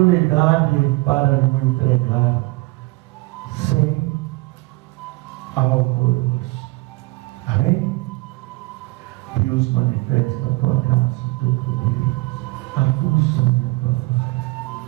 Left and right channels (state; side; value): quieter; left; 23.0 dB